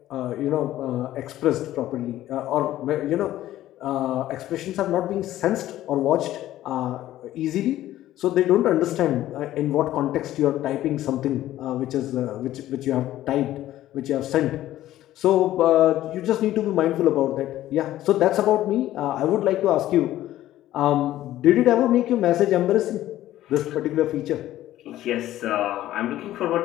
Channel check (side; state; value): right; quieter; 14.0 dB